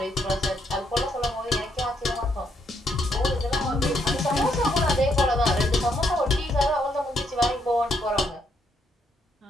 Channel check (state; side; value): normal; both; correlation 0.74